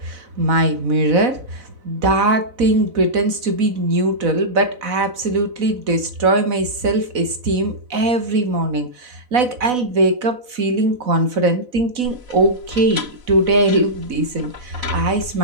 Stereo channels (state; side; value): late; left; 4.0 ms